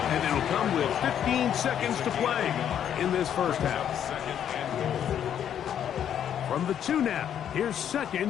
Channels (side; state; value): right; quieter; 9.5 dB